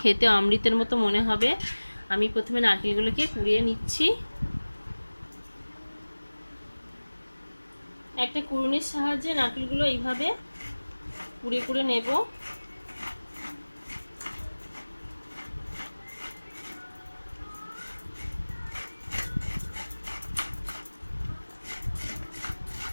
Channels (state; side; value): inverted; both; correlation -1.00